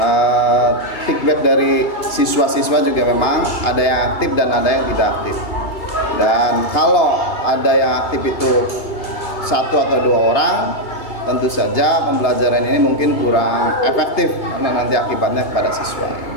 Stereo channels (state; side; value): late; right; 3.0 ms